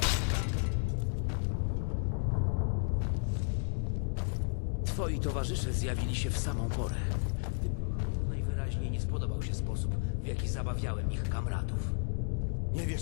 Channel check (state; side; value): silent; right; digital silence